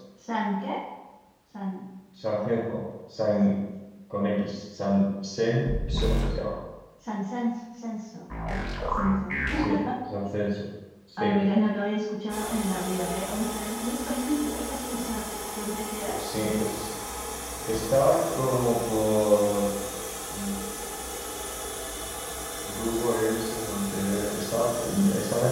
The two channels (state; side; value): identical; both; correlation 1.00